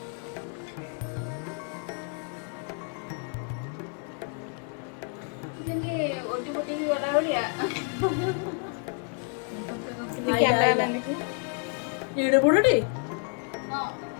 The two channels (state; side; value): quieter; right; 37.5 dB